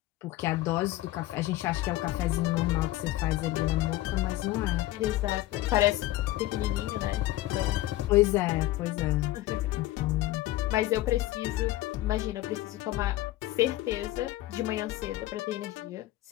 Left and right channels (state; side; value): quieter; right; 16.3 dB